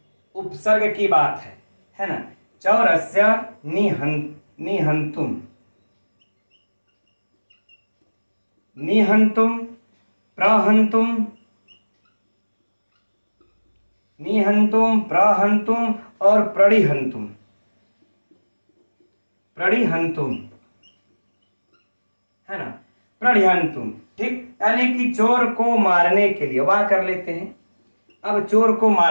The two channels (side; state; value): both; inverted; correlation -1.00